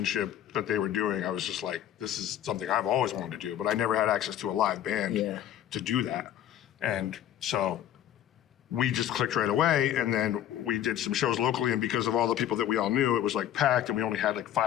that they were doing, I was just like, this is something I've always wanted to do, but I never had access to a live band to do that. And so we just clicked right away, and then we did some shows locally, and because of all the people that we all knew, it was like packed, and we only had like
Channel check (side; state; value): right; quieter; 11.1 dB